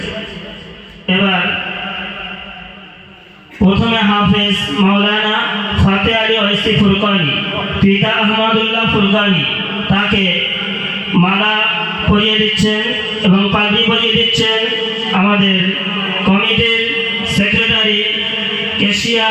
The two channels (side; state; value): both; identical; correlation 1.00